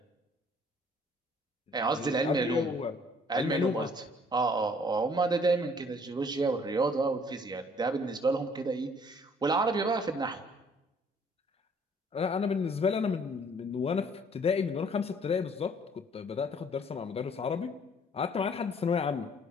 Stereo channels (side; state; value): both; normal; correlation 0.59